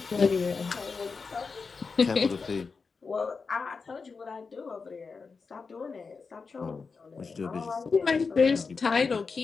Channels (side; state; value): right; quieter; 4.8 dB